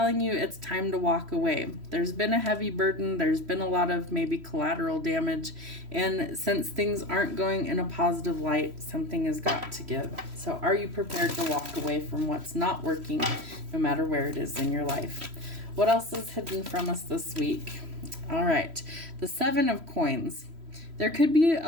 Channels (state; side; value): late; left; 3.1 ms